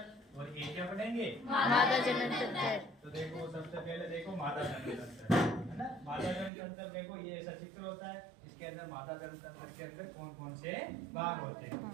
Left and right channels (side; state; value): left; drops out; at 6.5 s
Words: और एक क्या पढ़ेंगे? मादा जनन तंत्र। तो देखो सबसे पहले देखो मादा जनन तंत्र, है ना। मादा जनन तंत्र देखो ये ऐसा चित्र होता है। इसके अंदर मादा जनन तंत्र के अंदर कौन कौन से भाग होते हैं?